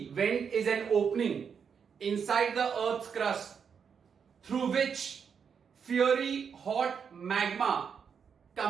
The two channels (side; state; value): left; quieter; 6.7 dB